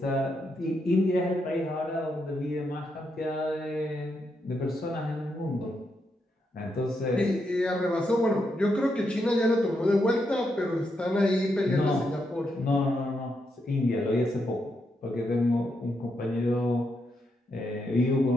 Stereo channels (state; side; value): normal; both; correlation 0.81